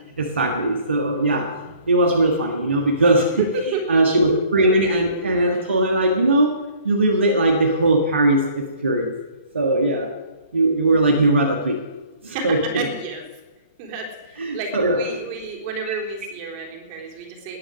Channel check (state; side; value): inverted; both; correlation -0.55